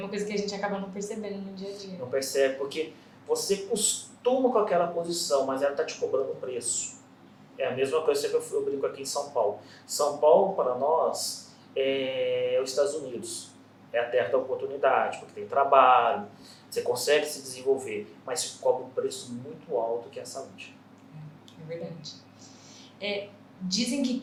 coisa que a gente acaba não percebendo no dia a dia. Não percebe, porque você costuma com aquela posição, mas ela está te cobrando um preço. É a mesma coisa que eu brinco aqui em São Paulo. São Paulo, para nós, é os Estados Unidos. É a terra da oportunidade, porque tem trabalho, você consegue se desenvolver, mas se cobra um preço muito alto que é a saúde. É verdade. Dizem que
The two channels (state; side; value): identical; both; correlation 1.00